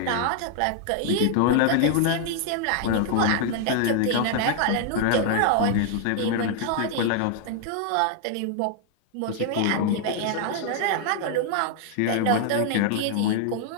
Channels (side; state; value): both; different; correlation 0.00